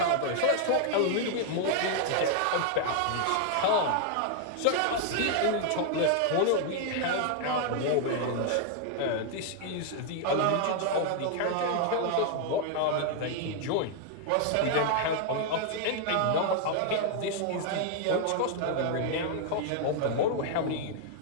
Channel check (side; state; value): both; different; correlation 0.00